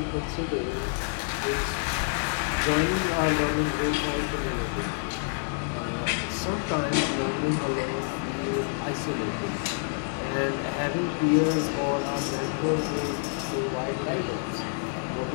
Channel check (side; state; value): right; silent; digital silence